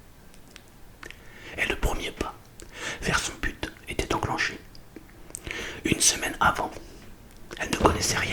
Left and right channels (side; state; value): both; identical; correlation 1.00